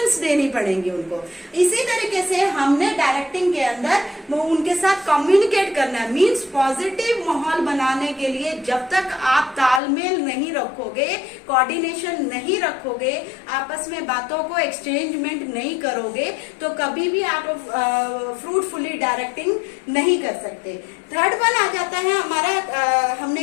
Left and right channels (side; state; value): right; drops out; at 9.8 s